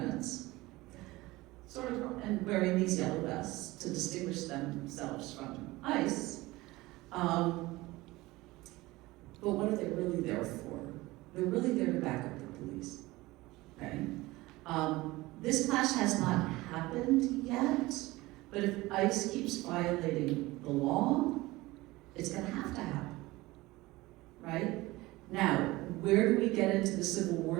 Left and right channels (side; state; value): left; quieter; 19.9 dB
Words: sort of, and wearing these yellow vests to distinguish themselves from ICE. But what are they really there for? They're really there to back up the police, okay? This clash has not happened yet, but if ICE keeps violating the law, it's gonna have to happen, right? Now, where do we get into the Civil